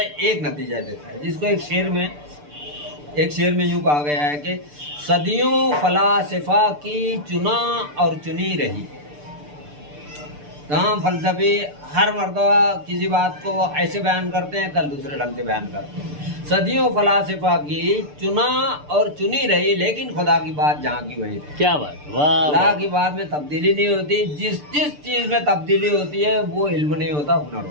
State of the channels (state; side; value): late; left; 6.8 ms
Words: एक नतीजा देता है, जिसको एक शेर में यूँ कहा गया है कि सदियों फलासफा की चुना और चुनी रही। तमाम फलसफे हर मर्तबा किसी बात को ऐसे बयान करते हैं, कल दूसरे ढंग से बयान करते हैं। सदियों फलासफा की चुना और चुनी रही, लेकिन खुदा की बात जहाँ की वही रही। क्या बात, वाह। अल्लाह की बात में तब्दीली नहीं होती। जिस चीज़ में तब्दीली होती है वो इल्म नहीं होता, हुनर